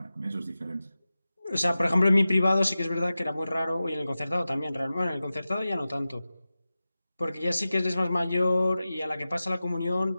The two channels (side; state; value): both; inverted; correlation -0.95